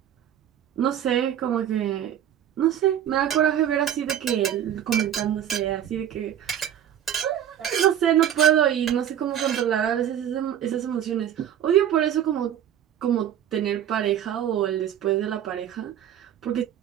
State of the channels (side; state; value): left; quieter; 10.2 dB